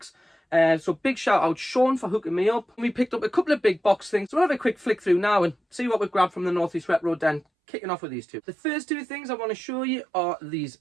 so big shout out Sean for hooking me up. We picked up a couple of big box things, so we'll have a quick flick through now and see what we've grabbed from the Northeast Retro Den. Kicking off with these two. The first two things I want to show you are these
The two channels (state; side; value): drops out; left; at 7.5 s